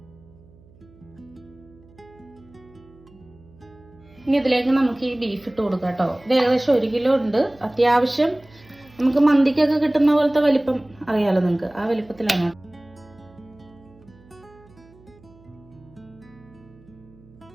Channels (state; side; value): noise; right; hum, 26 dB below the sound